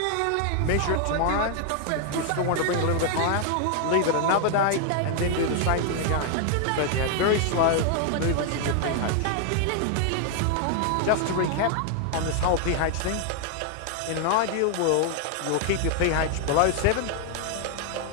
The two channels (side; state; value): both; different; correlation 0.00